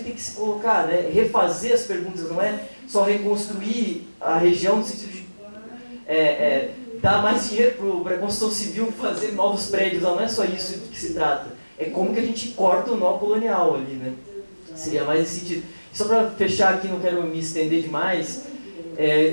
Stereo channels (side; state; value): both; inverted; correlation -1.00